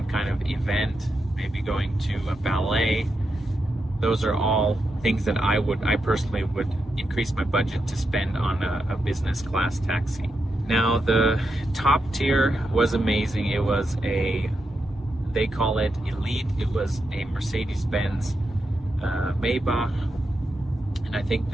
kind of event, maybe going to a ballet. Those are all things that I personally would increase my budget to spend on a business class taxi. Now the top tier was amazing. It was they call it Elite. It was a Mercedes-Benz Maybach, and I think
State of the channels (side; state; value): both; normal; correlation 0.85